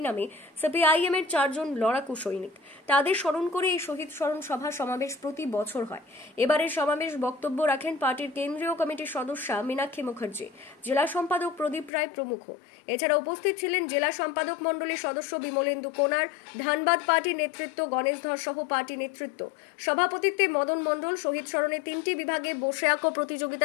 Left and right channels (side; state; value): right; drops out; at 11.9 s